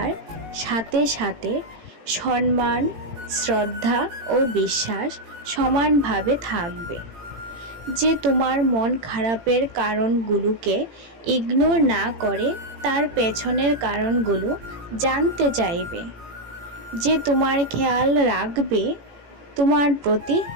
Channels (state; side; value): late; left; 18 ms